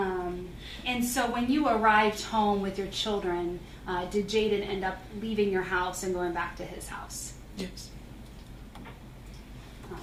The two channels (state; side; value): identical; both; correlation 1.00